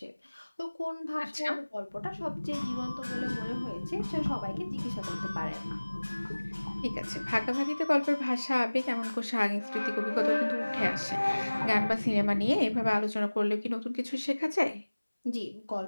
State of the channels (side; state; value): both; inverted; correlation -1.00